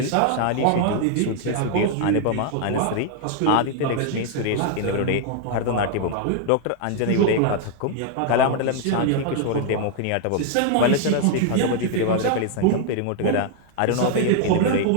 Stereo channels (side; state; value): both; different; correlation 0.00